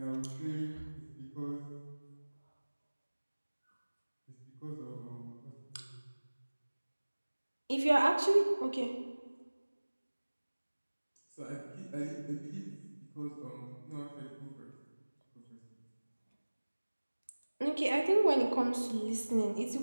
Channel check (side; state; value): both; inverted; correlation -1.00